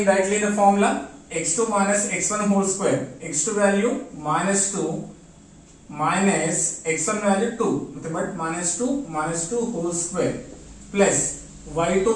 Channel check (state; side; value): identical; both; correlation 1.00